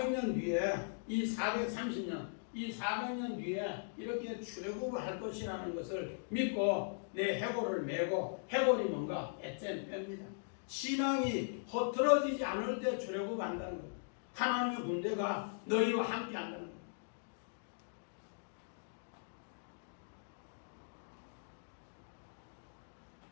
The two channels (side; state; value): right; silent; digital silence